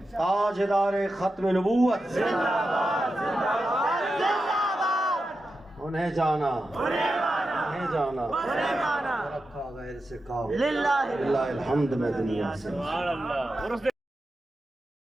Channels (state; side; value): normal; both; correlation 0.90